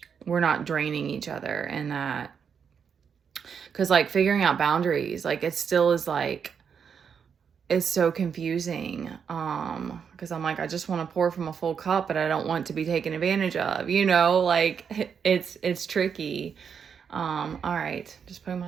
we're not draining each other. And that, because like figuring out boundaries, like it still is like, it's so confusing, because I'm like, I just want to pour from a full cup, but I don't want to be taken advantage of, like it's tricky. All right, just putting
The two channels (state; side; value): quieter; left; 6.9 dB